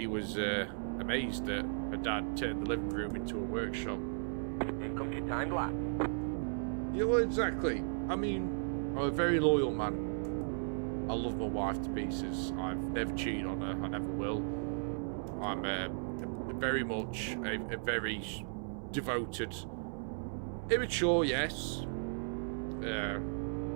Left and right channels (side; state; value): left; silent; 54 dB below the other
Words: was amazed that her dad turned the living room into a workshop. Here comes your time lap. Yeah, well, exactly. I mean, I'm a very loyal man. I love my wife to pieces. I've never cheated on her. I never will. I'm very much a very devoted, immature, yes.